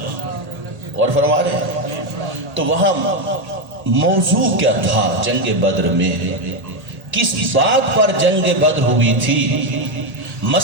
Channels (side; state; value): left; late; 1.8 ms